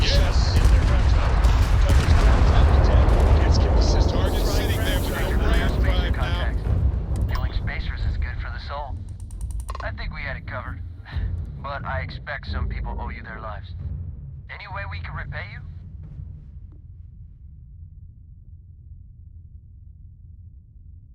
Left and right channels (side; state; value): both; identical; correlation 1.00